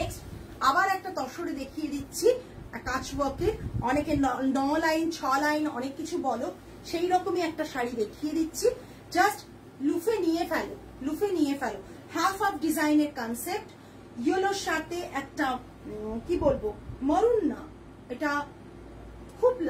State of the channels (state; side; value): identical; both; correlation 1.00